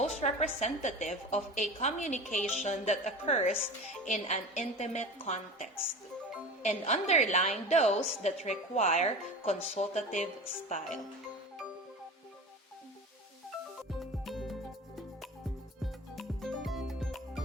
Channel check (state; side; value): normal; both; correlation 0.33